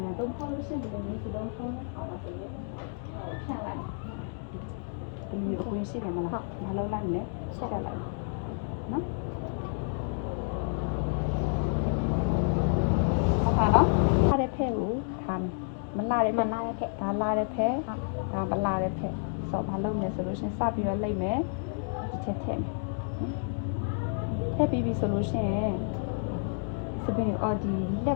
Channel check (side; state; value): right; silent; 58 dB below the other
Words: တုံးဖောက်လို့ရှိရင်ဒီလိုမျိုးဒီတိုင်းဖုန်းနဲ့ခေါ်လို့ဖြန့်လိုက်ဒီမျိုးကိုရှိတယ်မလားမလုပ်လိုက်နဲ့ဆက်လိုက်နော်ဟုတ်ပါနော်လာတဲ့ဖက်ကိုခံမလာတဲ့ဖက်ဒါလာတဲ့ဖက်ဒါမလာတဲ့ဖက်ဆိုဘာလုပ်လဲဆိုလို့ရှိရင်စပြီးတော့လိုက်မယ်ဒီချက်ထည့်ထည့်ပြီးပြီဆိုလို့ရှိရင်စပင်းအော်ဒီလက